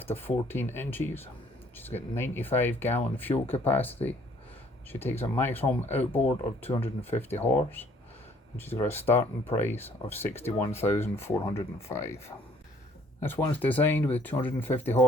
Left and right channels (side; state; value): both; normal; correlation 0.60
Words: of 14 inches, she's got 95 gallon fuel capacity, she takes a maximum outboard of 250 horse, and she's got a starting price of $61,405. This one's designed with 250